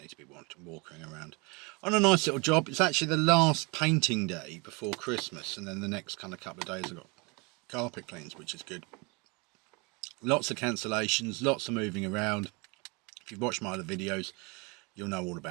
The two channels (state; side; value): quieter; left; 28.9 dB